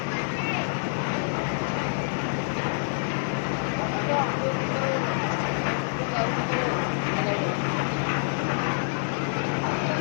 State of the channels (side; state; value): right; silent; digital silence